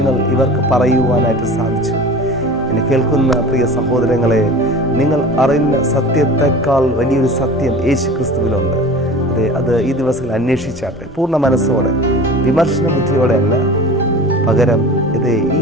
ഇവർക്ക് പറയുവാനായിട്ട് സാധിച്ചു. എന്നെ കേൾക്കുന്ന പ്രിയ സഹോദരങ്ങളെ, നിങ്ങൾ അറിയുന്ന സത്യത്തെക്കാൾ വലിയൊരു സത്യം യേശു ക്രിസ്തുവിലുണ്ട്. അത് ഈ ദിവസങ്ങളിൽ അന്വേഷിച്ചാട്ടെ, പൂർണ്ണ മനസ്സോടെ, വിമർശന ബുദ്ധിയോടെ അല്ല, പകരം ഈ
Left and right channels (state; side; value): normal; both; correlation 0.37